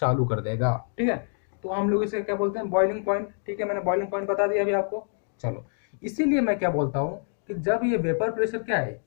कर देगा, ठीक है। तो हम लोग इसे क्या बोलते हैं, बॉइलिंग पॉइंट, ठीक है। मैंने बॉइलिंग पॉइंट बता दिया अभी आपको। चलो, इसीलिए मैं क्या बोलता हूं कि जब ये वेपर प्रेशर क्या है,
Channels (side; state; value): right; silent; 61 dB below the other